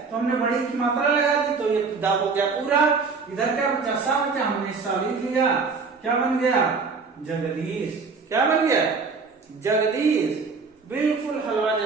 तो हमने बड़ी की मात्रा लगा दी, तो ये दा हो गया पूरा। इधर क्या बचा? सा बचा। हमने सा लिख लिया। क्या बन गया? जगदीश। क्या बन गया? जगदीश। बिल्कुल हलवा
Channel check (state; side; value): quieter; left; 4.7 dB